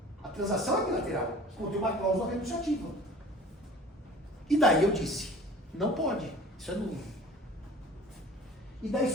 A transação é bilateral, contém uma cláusula renunciativa. E daí eu disse, não pode, isso é nulo. E daí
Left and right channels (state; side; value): normal; both; correlation 0.45